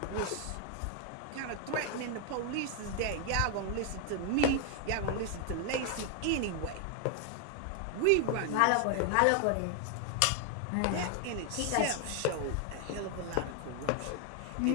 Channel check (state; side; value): different; both; correlation 0.00